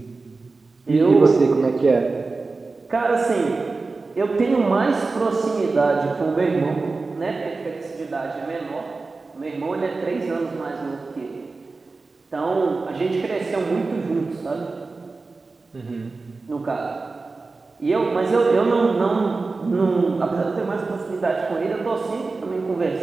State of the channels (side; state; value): left; quieter; 3.8 dB